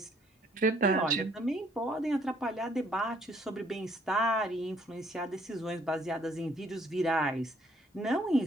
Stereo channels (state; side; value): normal; both; correlation 0.64